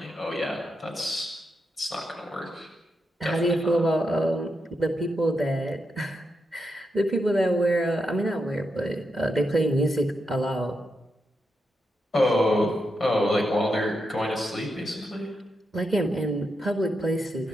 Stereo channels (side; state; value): both; normal; correlation 0.85